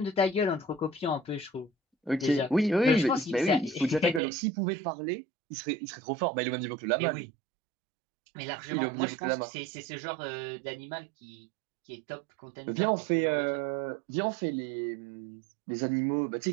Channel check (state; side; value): drops out; left; at 4.2 s